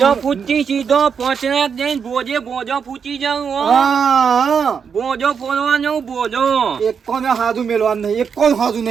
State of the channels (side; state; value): left; quieter; 6.6 dB